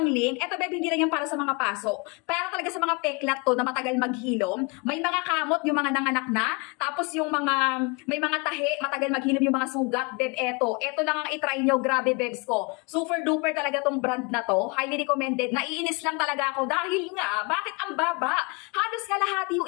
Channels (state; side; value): quieter; right; 31.0 dB